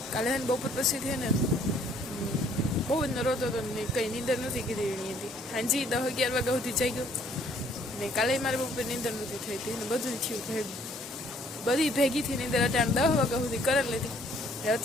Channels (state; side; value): normal; both; correlation 0.62